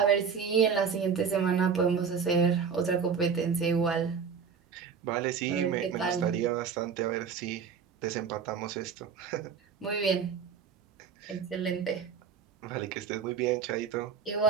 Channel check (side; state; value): left; quieter; 6.5 dB